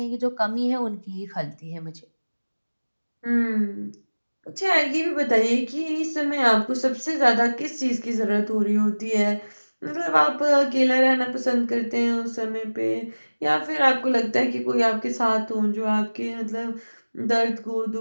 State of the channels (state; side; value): inverted; both; correlation -1.00